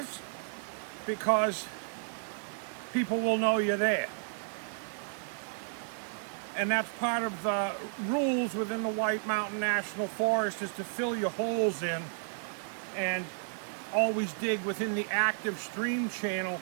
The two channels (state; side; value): silent; left; 56 dB below the other